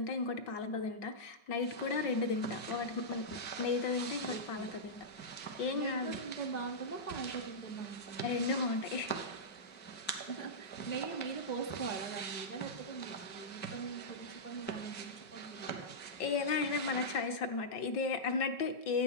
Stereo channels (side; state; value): right; late; 5.3 ms